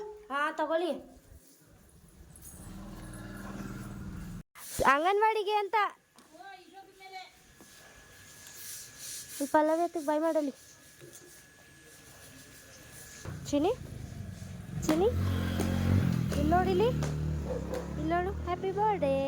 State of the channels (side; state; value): both; identical; correlation 1.00